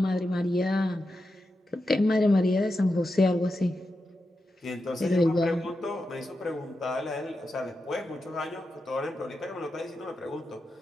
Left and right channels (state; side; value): normal; both; correlation 0.88